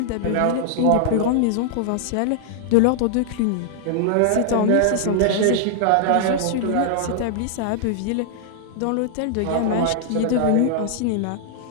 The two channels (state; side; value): different; both; correlation -0.01